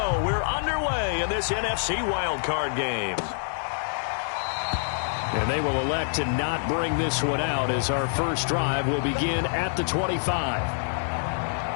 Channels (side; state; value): right; silent; digital silence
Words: We're underway in this NFC wildcard game. And they will elect to not bring this one out as our first drive will begin at the 25.